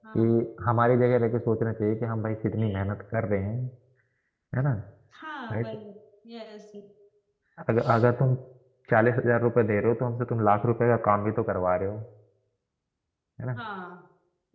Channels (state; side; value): identical; both; correlation 1.00